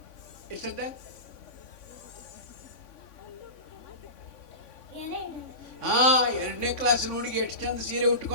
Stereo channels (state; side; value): late; right; 3.5 ms